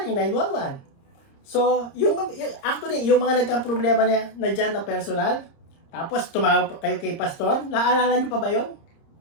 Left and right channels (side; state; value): right; late; 30 ms